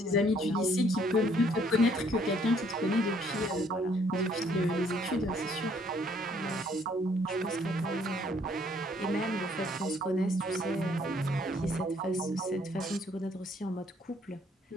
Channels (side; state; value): both; normal; correlation 0.64